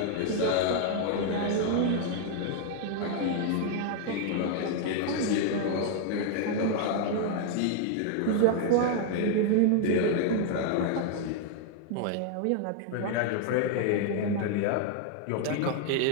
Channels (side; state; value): both; different; correlation 0.00